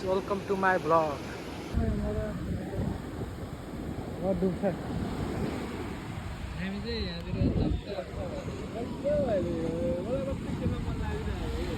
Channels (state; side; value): identical; both; correlation 1.00